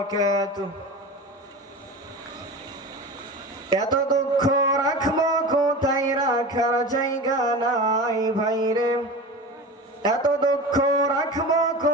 এত দুঃখ রাখবো কোথায়, রাখার জায়গা নাই ভাইরে। এত দুঃখ রাখবো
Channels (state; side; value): normal; both; correlation 0.31